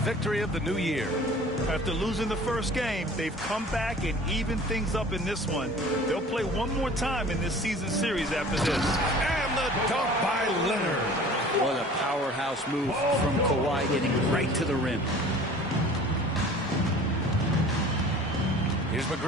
of the new year. After losing the first game, they've come back and evened things up in this one. They'll play one more time in this season series after this. And the dunk by Leonard. What a powerhouse move from Kawhi, hitting right to the rim. Here's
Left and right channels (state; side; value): normal; both; correlation 0.45